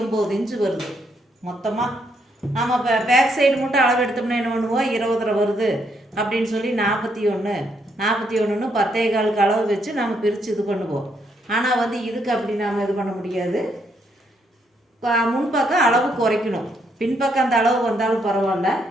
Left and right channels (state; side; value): normal; both; correlation 0.74